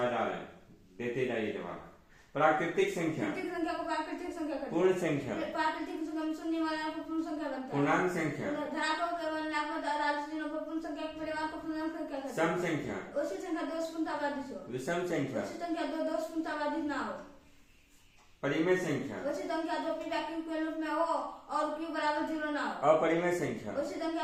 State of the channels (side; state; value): both; identical; correlation 1.00